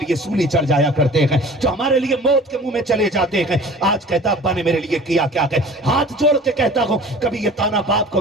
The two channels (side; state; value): both; normal; correlation 0.44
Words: سولی چڑھ جایا کرتے ہیں، جو ہمارے لیے موت کے منہ میں چلے جاتے ہیں۔ آج کہتا ابا نے میرے لیے کیا کیا کہ ہاتھ جوڑ کے کہتا ہوں کبھی یہ تانا باپ